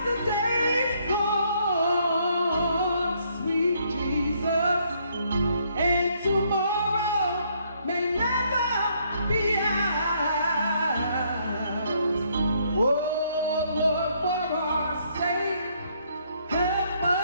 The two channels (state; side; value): inverted; both; correlation -0.69